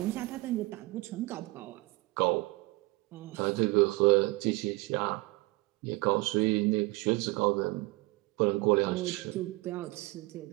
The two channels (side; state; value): left; quieter; 23.1 dB